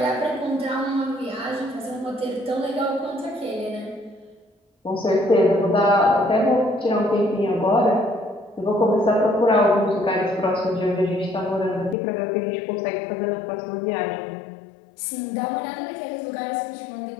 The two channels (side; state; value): right; drops out; at 12.0 s